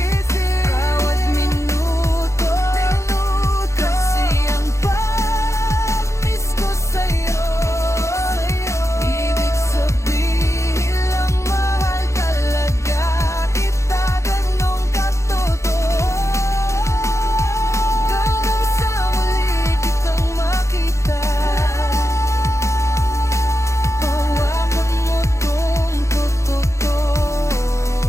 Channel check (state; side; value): late; right; 0.14 ms